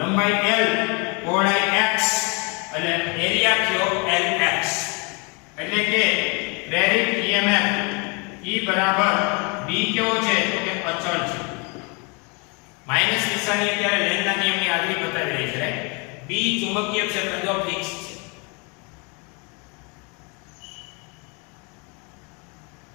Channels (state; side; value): quieter; right; 32.1 dB